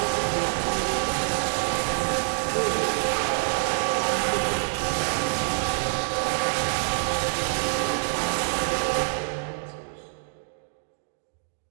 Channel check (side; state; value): left; silent; 61 dB below the other